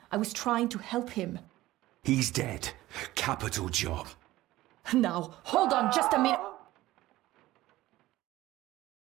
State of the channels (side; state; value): left; quieter; 16.7 dB